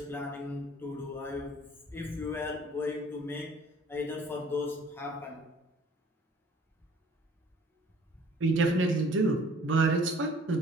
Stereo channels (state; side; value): normal; both; correlation 0.53